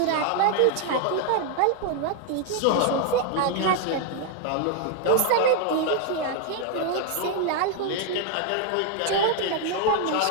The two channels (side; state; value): both; different; correlation 0.00